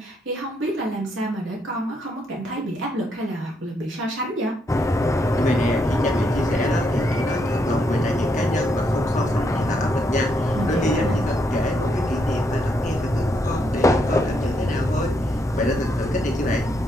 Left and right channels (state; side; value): normal; both; correlation 0.76